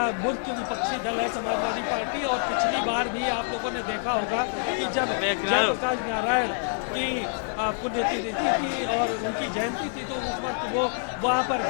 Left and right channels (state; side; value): silent; right; 60 dB below the other